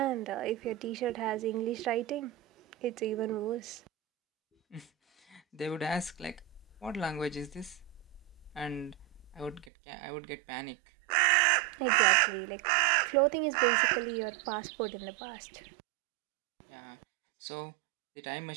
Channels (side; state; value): left; drops out; at 9.7 s